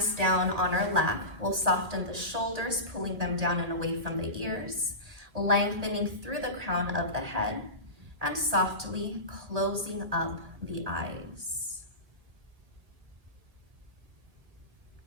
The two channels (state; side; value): late; left; 1.8 ms